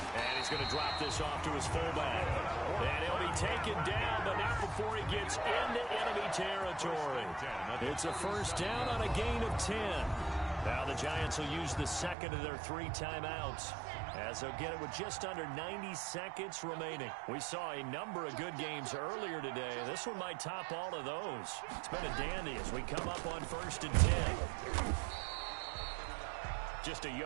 And he's going to drop this off to his fullback. And he'll be taken down, but not before he gets into enemy territory. It's a first down on a gain of 10. Now the Giants will use the 2nd of their 3 timeouts as they'll get it with just under 90 seconds remaining. We saw a number of good games earlier today. This one might top all of those. It's been a dandy as we come up on 1st and 10. Just a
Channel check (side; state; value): left; drops out; at 12.2 s